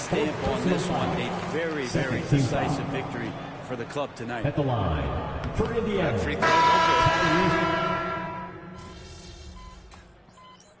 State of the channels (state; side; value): identical; both; correlation 1.00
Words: on this one. A very, very decisive victory for the club tonight. At the line for Indiana. Free throw, no good.